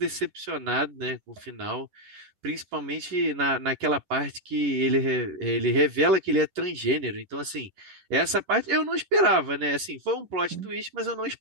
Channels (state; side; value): late; left; 10 ms